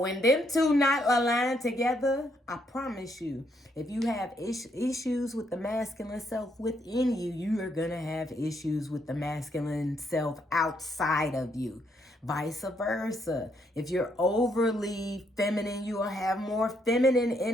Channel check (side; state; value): both; normal; correlation 0.74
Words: them two not aligned together, I promise you, if you have issues with the masculine self within you, you are going to have issues with the masculine self outside of you. vice versa. If you're overly feminine, you will have more feminine